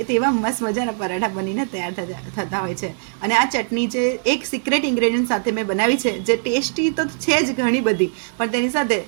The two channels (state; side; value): silent; left; digital silence